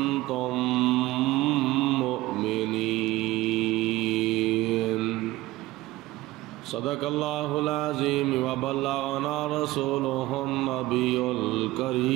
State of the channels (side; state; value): left; quieter; 18.0 dB